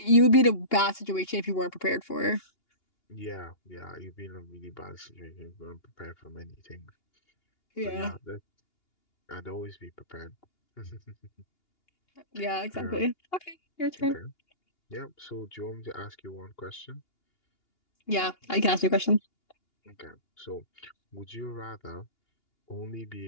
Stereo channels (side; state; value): right; late; 2.8 ms